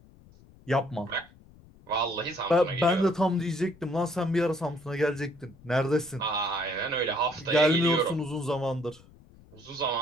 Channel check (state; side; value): noise; left; rumble, 25 dB below the sound